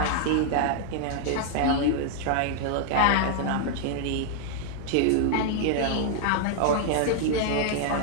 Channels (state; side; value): different; both; correlation 0.00